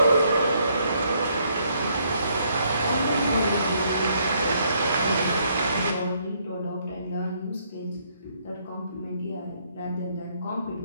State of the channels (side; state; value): both; inverted; correlation -0.70